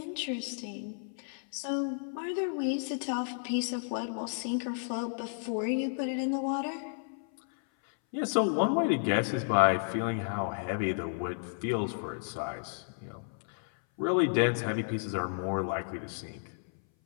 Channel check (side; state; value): right; silent; 56 dB below the other